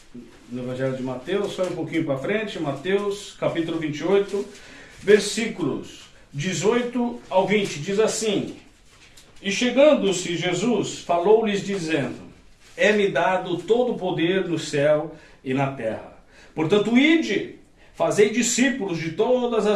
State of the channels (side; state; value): both; identical; correlation 1.00